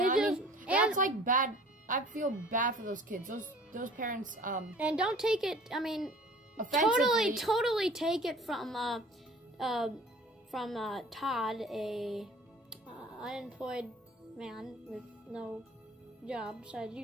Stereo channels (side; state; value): both; normal; correlation 0.47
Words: that's like bad. I feel bad for those kids. Those parents. And don't take it. I mean, offensively. totally take it from Todd, a unemployed man with no job besides